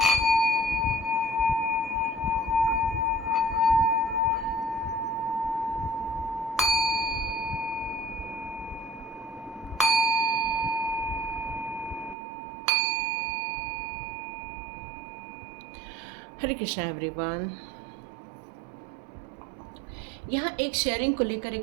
हरे कृष्णा एवरीवन। यहाँ एक शेयरिंग को लेकर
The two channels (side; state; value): left; drops out; at 12.2 s